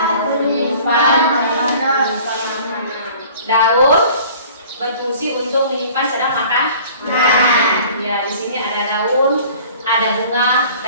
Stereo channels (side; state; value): both; inverted; correlation -0.48